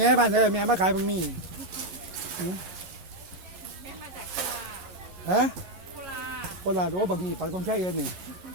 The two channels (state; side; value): late; left; 11 ms